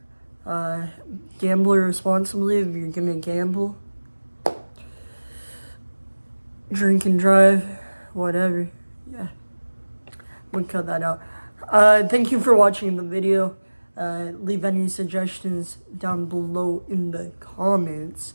Gamble responsibly if you're going to gamble. Drink and drive, whatever. Yeah, we'll cut that out. Thank you for watching the video. Leave any suggestions down below in the comments.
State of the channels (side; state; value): both; inverted; correlation -1.00